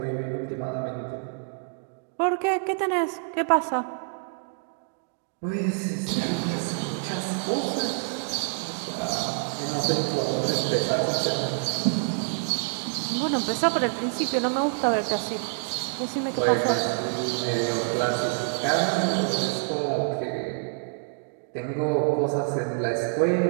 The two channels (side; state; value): left; silent; 60 dB below the other